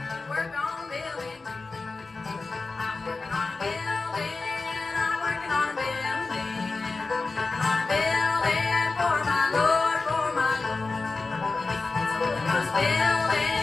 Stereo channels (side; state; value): right; quieter; 3.8 dB